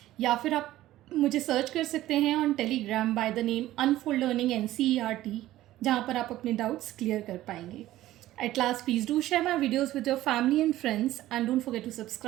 या फिर आप मुझे सर्च कर सकते हैं on Telegram by the name unfold learning NCERT, जहाँ पर आप अपने डाउट्स क्लियर कर पाएंगे। At last, please do share my videos with your family and friends and don't forget to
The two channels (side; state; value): left; quieter; 14.9 dB